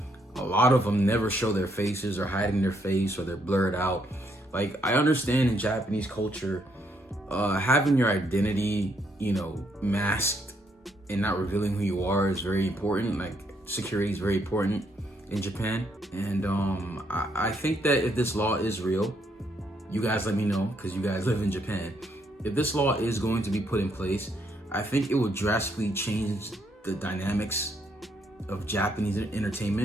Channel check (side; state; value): both; normal; correlation 0.73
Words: lot of them never show their faces or hiding their face or they're blurred out. I understand in Japanese culture, having your identity, masked and not revealing who you are is very important. Security is very important in Japan. And I think that if this law is real, you guys let me know, because you guys live in Japan. If this law is going to be put in place, I think it will drastically change the dynamics of Japanese